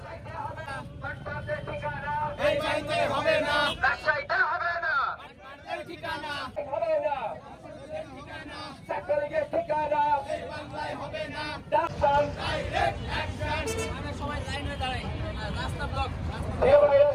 রাজশাহীতে হবে না ঠিকানা হবে না ছাত্রলীগের ঠিকানা হবে না সবাই লাইন হয়ে দাঁড়ায় রাস্তা ব্লক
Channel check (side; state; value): both; identical; correlation 1.00